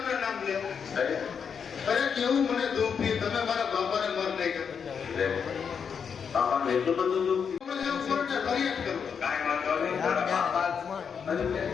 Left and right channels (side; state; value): right; quieter; 6.7 dB